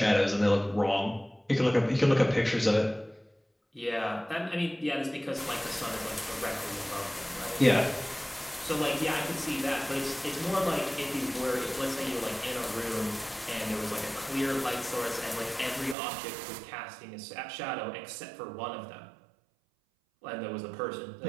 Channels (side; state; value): left; drops out; at 16.0 s